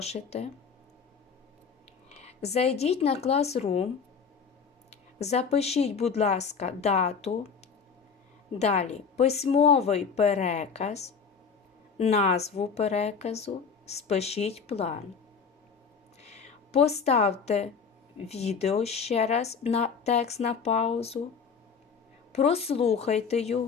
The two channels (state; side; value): quieter; right; 5.9 dB